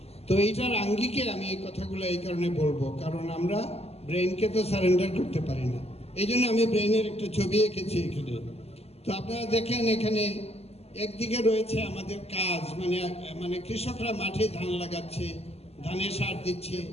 তো এইটার আঙ্গিকে আমি এই কথাগুলো এই কারণে বলবো, কারণ আমরা ব্রেনকে তো সারেন্ডার করতে পারি না। এই জন্য আমি ব্রেনের একটা ছবি এঁকেছি এখানে। তো আপনারা দেখেন, এখানে একদিকে রয়েছে আমাদের কাজ, মানে কৃষকরা মাঠে ধান লাগাচ্ছে, ধানে সার দিচ্ছে,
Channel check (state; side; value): late; right; 0.30 ms